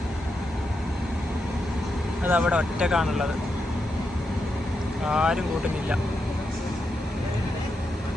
അതവിടെ ഒറ്റക്കാണുള്ളത്. ആരും കൂട്ടുന്നില്ല.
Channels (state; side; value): normal; both; correlation 0.85